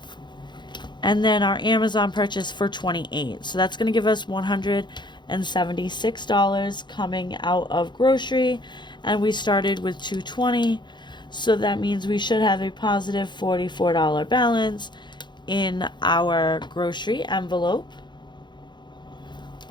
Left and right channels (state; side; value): late; right; 0.22 ms